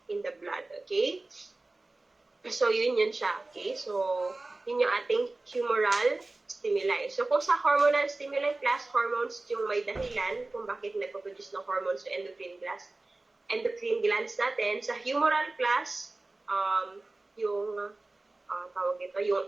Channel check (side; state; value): left; quieter; 3.1 dB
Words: in the blood, okay? So, yun siya, okay? So, yun yung ating humoral stimuli. So, kung sa hormonal stimuli class, hormones yung may dahilan kung bakit nagpo-produce ng hormones sa endocrine glands natin. Sa humoral class, yung